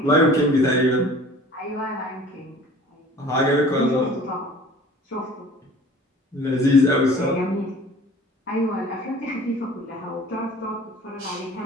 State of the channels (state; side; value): normal; both; correlation 0.47